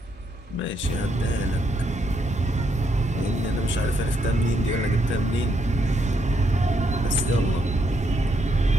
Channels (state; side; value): normal; both; correlation 0.76